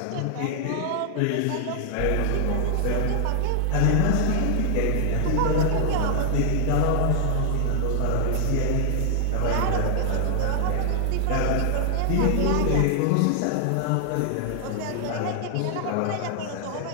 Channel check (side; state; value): both; different; correlation 0.00